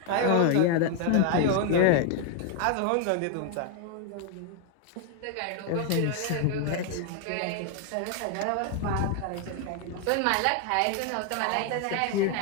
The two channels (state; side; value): different; both; correlation 0.00